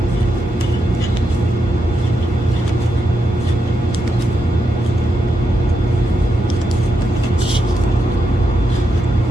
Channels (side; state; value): both; normal; correlation 0.84